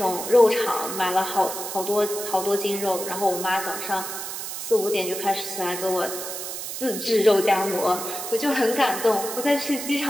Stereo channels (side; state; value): right; noise; hiss, 6 dB below the sound